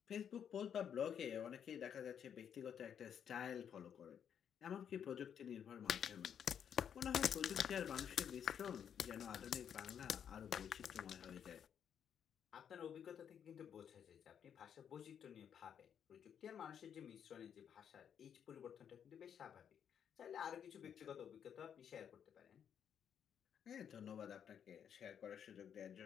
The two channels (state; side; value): quieter; right; 8.4 dB